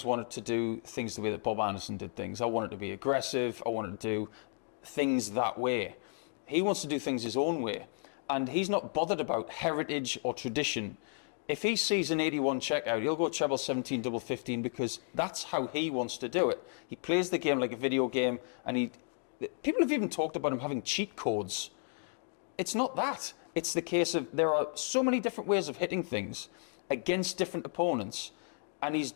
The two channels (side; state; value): right; silent; 56 dB below the other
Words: wanted to do things the way that Bob Anderson did things. I wanted to be aggressive. I wanted to do things that way. He wants to do things his own way. And he's not bothered about heritage or tradition. If he sees an 81 checkout, he'll go treble 17, double 15, because that's how he wants to do it. He plays the game like a video game, and people have even talked about him having cheat codes. It's not that. It's the case of there are so many different ways of hitting things against different opponents, and he's